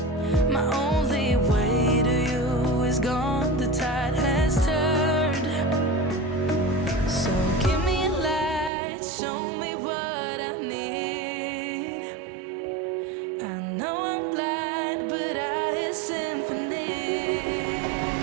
My only way to you is gone, the tide has turned. So give me a light, show me what I need. I know I'm blind, but I hear symphonies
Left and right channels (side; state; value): left; drops out; at 8.7 s